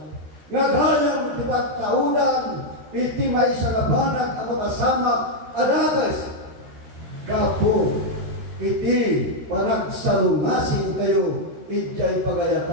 Nga gayang ti pagkaunan, iti may sagabanag ang makasamak, adagas, kapo, iti panagsalungasing kayo, ijay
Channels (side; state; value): left; late; 13 ms